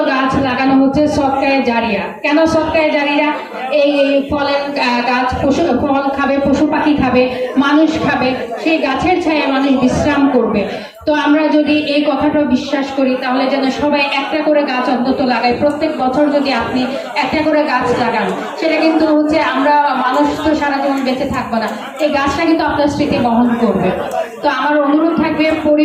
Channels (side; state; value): both; identical; correlation 1.00